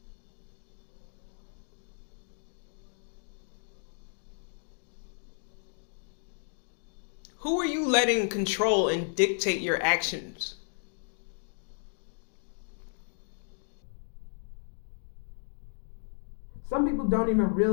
Who are you letting control and dictate your actions? Some people don't even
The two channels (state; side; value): silent; right; digital silence